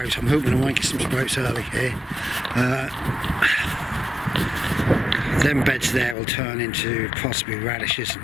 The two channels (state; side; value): drops out; right; at 6.2 s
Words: I'm hoping to make some sprouts early here. Them beds there will turn into possibly radishes